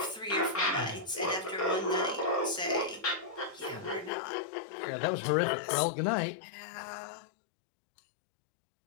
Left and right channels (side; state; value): right; drops out; at 4.1 s